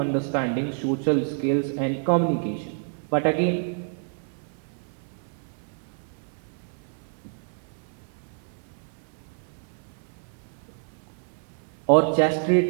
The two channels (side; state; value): left; silent; 55 dB below the other